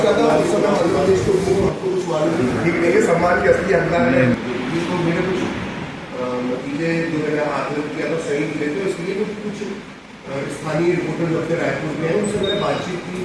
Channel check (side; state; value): both; identical; correlation 1.00